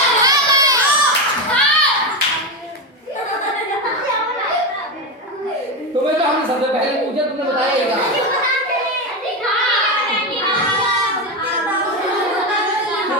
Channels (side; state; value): both; normal; correlation 0.13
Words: तुम्हें तो हमने सबसे पहले पूछा तुमने बताइएगा